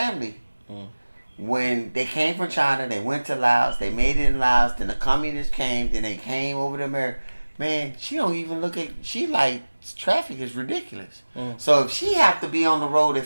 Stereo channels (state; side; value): inverted; both; correlation -1.00